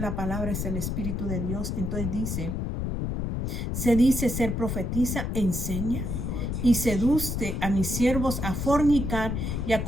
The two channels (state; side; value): noise; left; rumble, 2 dB below the sound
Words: la palabra es el Espíritu de Dios. Entonces se dice ser profetiza, enseña y seduce a mis siervos a fornicar y a